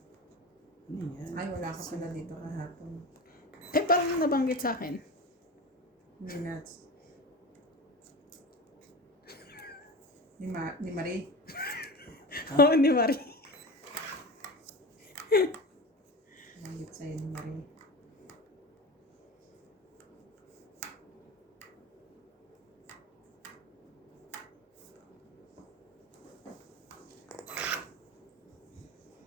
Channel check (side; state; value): both; normal; correlation 0.29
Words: Ano yan? Ay, wala ka pala dito kahapon. Eh, parang nabanggit sa akin. Minutes. Ni Marie. Oo, ni Marie. Nangit sa'yo ni Marie.